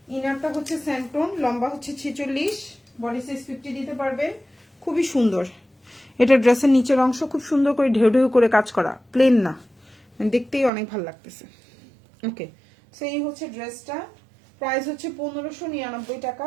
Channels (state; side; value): drops out; left; at 10.7 s